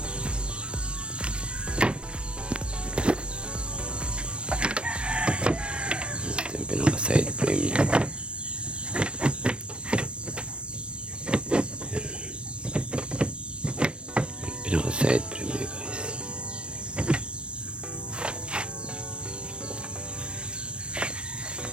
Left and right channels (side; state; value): left; late; 0.058 ms